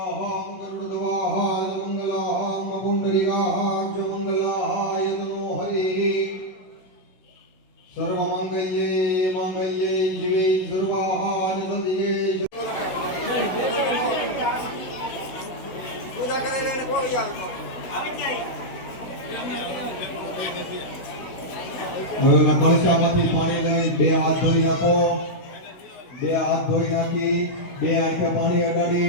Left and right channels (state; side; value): late; right; 16 ms